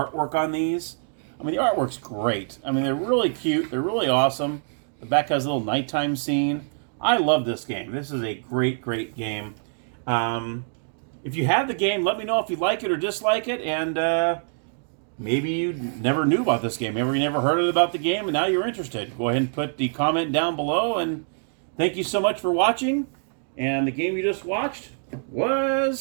on these. I mean, the artwork's great. I mean, they're really cute. They're really awesome. The back has a little nighttime scene. I love this game. This is a great, great game. If you have the game, let me know if you like it or dislike it. And maybe you never knew about this game. Maybe you never heard about the game, and now you're interested. Go ahead and put the comment down below. And thank you so much for watching. And the game you just watched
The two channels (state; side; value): silent; left; digital silence